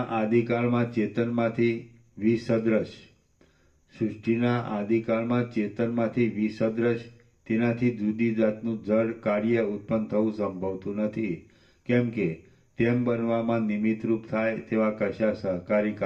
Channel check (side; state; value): both; identical; correlation 1.00